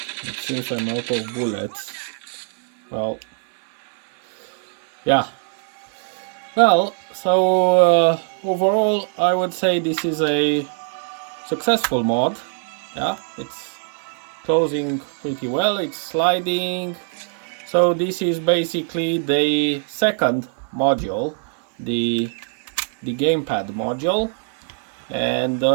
It seems I'm out of bullets. Well, yeah. Well, so overall I would say this is a successful mod. Yeah, it's closing pretty well, it's sliding. So this is basically the second module, the gamepad module, and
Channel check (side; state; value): left; silent; 64 dB below the other